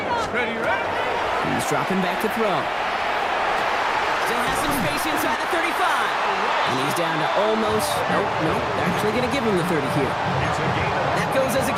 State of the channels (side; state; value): both; identical; correlation 1.00